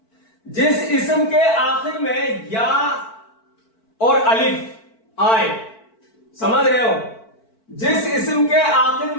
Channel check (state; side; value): late; right; 4.5 ms